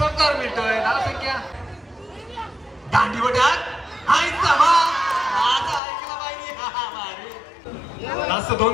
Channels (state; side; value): drops out; right; at 5.8 s